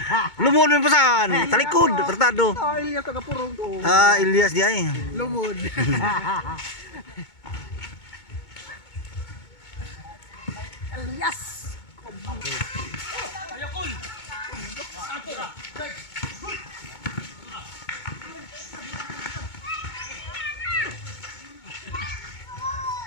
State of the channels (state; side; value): late; right; 2.2 ms